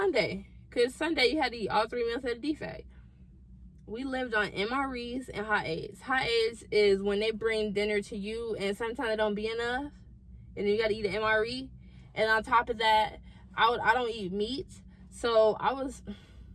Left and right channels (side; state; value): both; identical; correlation 1.00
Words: Because Sunday you had to eat all 3 meals at a defect. We lived on MREs and hot aids. Hot aids is when they bring dinner to you and sometimes it don't be enough. And then you got to eat an MRE. And on top of that, I don't eat meat. So I was...